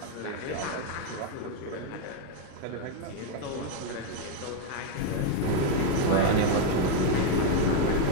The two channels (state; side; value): different; both; correlation 0.01